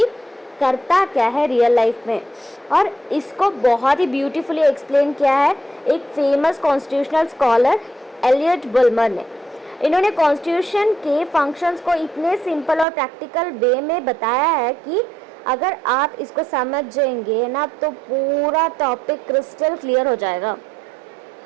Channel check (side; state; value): left; drops out; at 12.9 s